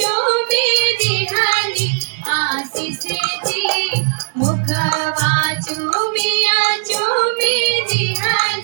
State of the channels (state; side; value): silent; left; digital silence